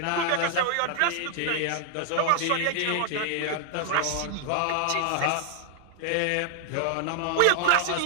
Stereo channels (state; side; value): different; both; correlation 0.00